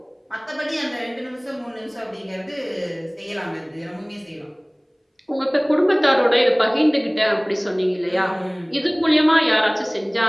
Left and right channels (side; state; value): both; identical; correlation 1.00